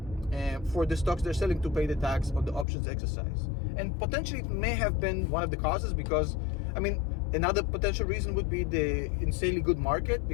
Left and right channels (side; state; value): right; drops out; at 2.7 s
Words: for the stocks they're selling to pay the tax on the options exercise. And potentially it may have been one of the causes, because, I mean, another potential reason would be the insanely good market,